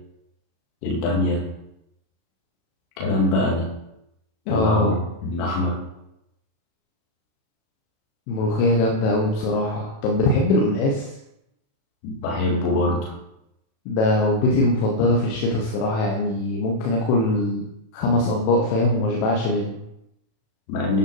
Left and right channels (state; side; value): late; right; 36 ms